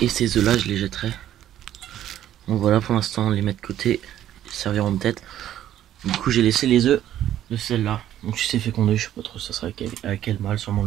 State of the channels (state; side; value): quieter; left; 11.9 dB